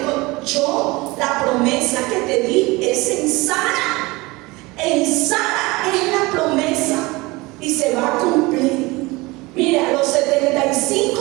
yo, la promesa que te di es en Sara. En Sara es la promesa y se va a cumplir. Mira, a los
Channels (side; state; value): left; quieter; 22.8 dB